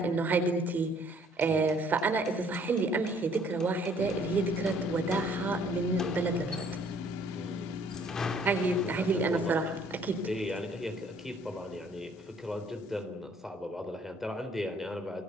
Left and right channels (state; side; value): normal; both; correlation 0.60